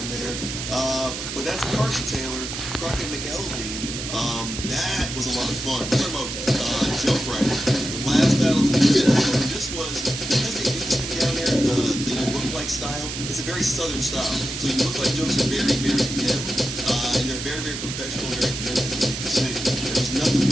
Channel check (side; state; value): right; noise; hiss, 6 dB below the sound